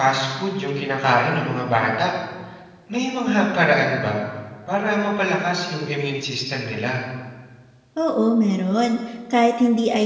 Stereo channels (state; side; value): identical; both; correlation 1.00